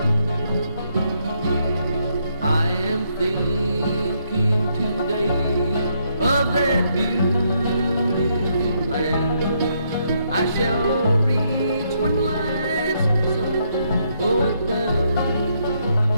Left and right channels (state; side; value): inverted; both; correlation -0.75